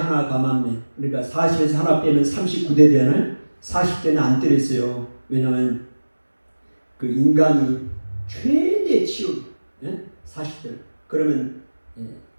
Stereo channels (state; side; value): inverted; both; correlation -1.00